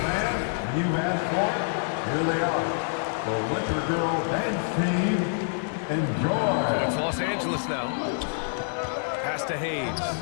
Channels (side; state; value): right; silent; digital silence